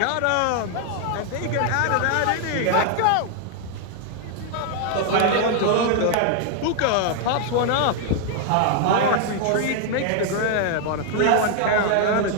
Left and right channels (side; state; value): both; different; correlation 0.00